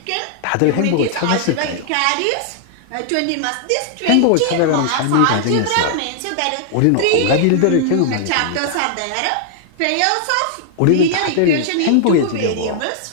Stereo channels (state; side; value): different; both; correlation -0.01